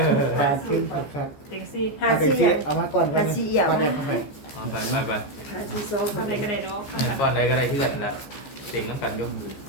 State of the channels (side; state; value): right; late; 14 ms